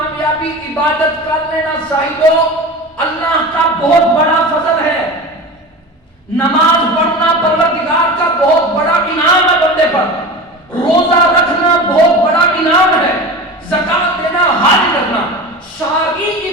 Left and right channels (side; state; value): both; normal; correlation 0.31